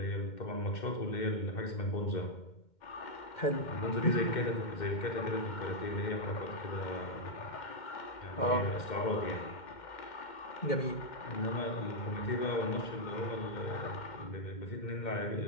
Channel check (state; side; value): late; right; 2.1 ms